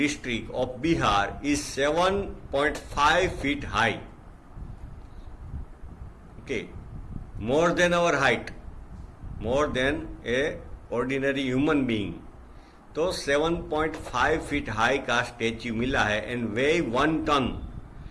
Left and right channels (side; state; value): both; identical; correlation 1.00